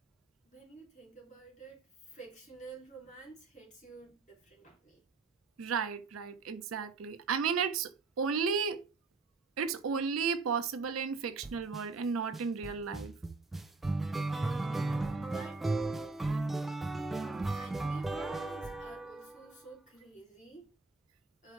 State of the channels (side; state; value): left; quieter; 4.1 dB